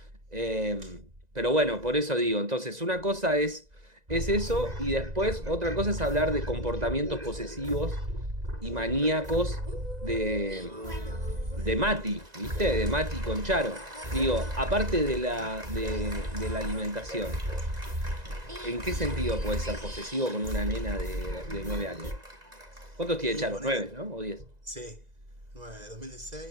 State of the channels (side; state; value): left; late; 2.0 ms